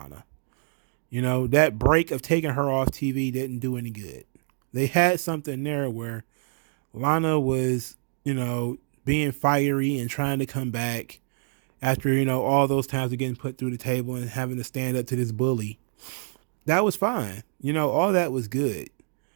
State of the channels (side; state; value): left; silent; 61 dB below the other